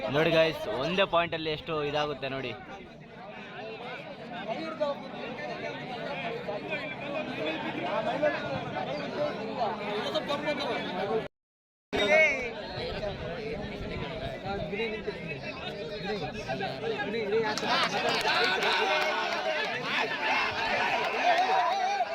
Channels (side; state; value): both; identical; correlation 1.00